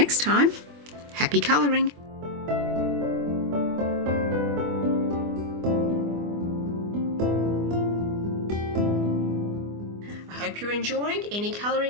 time, happy colouring! I hope you're enjoying any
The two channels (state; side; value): late; left; 24 ms